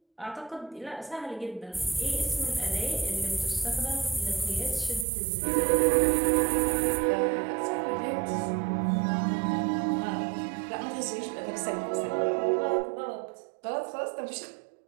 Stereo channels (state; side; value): drops out; left; at 5.1 s